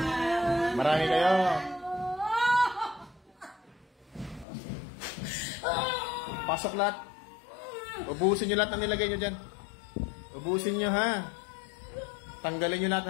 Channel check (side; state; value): right; drops out; at 4.5 s